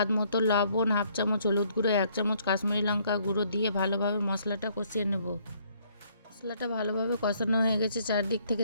মতো লবণ, 1/2 চামচ হলুদ গুঁড়ো, 1 চামচ কাশ্মীরি লঙ্কা গুঁড়ো দিয়ে ভালোভাবে মশলাটা কষিয়ে নেব। মশলাটা ভালোভাবে কষানো হয়ে গেছে, চারদিক থেকে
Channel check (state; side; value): inverted; both; correlation -0.66